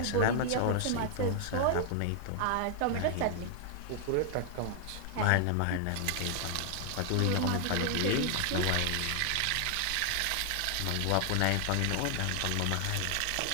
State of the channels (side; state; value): both; different; correlation 0.00